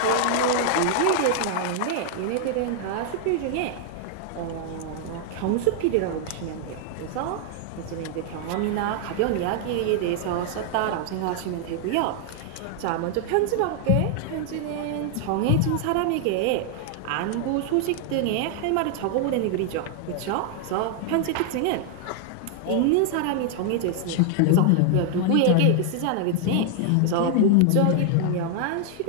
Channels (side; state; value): both; different; correlation 0.00